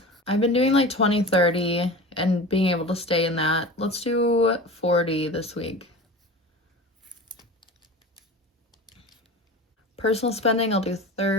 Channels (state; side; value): normal; both; correlation 0.34